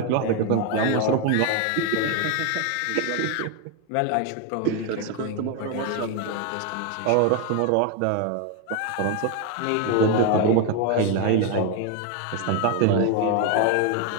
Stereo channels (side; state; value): both; different; correlation 0.01